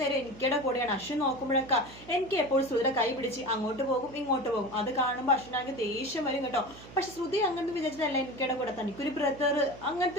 എനിക്കടെ കൂടെയാണ്. അശ്വിൻ നോക്കുമ്പോഴൊക്കെ എനിക്ക് എപ്പോഴും ശ്രുതിയുടെ കൈ പിടിച്ച് അങ്ങോട്ട് പോകും ഇങ്ങോട്ട് പോകും. അത് കാണുമ്പോൾ അശ്വിനാണെങ്കിൽ ദേഷ്യം വരും കേട്ടോ. പക്ഷെ ശ്രുതി അങ്ങനത്തെ വിചാരിച്ചിട്ടല്ല എനിക്കടെ കൂടെ, തനിക്കൊരു ബ്രദർ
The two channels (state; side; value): noise; right; hum, 18 dB below the sound